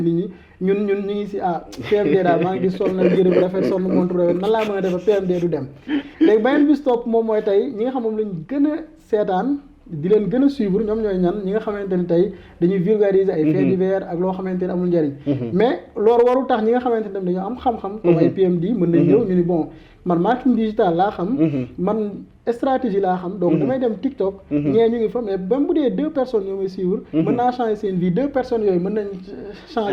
nit ñi ñun ñu ngi si PMD daal maa ngi gis sol na yére bu rafet sol na montre bu rafet nan laa mën a def PMD du dem léegi beneen bis topp moom mooy tey ñi nga xam moom lañ gën a seetaan di leen gën a suivre ñoom ñooy ñan ñi nga xamante ni tey dañuy vulgariser ay faits divers ak loo xamante ni amul njariñ mais loolu warul tax ñi nga xamante ni dañoo am xam-xam comme ay PMD mën nañ ñëw ñu ni bon man marketing digital laa xam man stratégie laa xam donc damay dem TikTok ñee ñu ngi fa mais même bu dee 2 personnes ñoo may suivre mën naa changer seen vie 2 personnes yooyu mën nañ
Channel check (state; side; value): identical; both; correlation 1.00